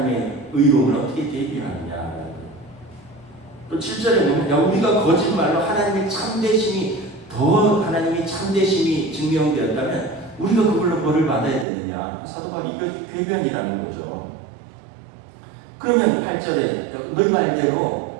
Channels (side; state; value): left; drops out; at 11.7 s